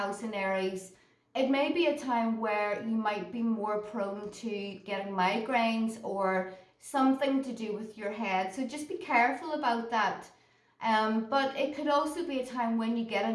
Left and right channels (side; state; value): both; identical; correlation 1.00